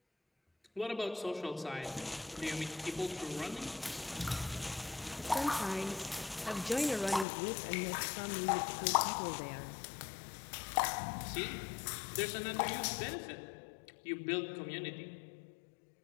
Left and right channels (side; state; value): right; drops out; at 7.2 s